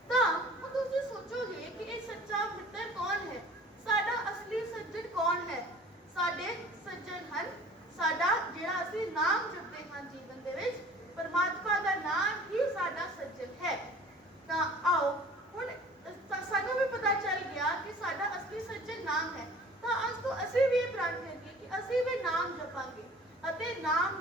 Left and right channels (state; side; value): normal; both; correlation 0.47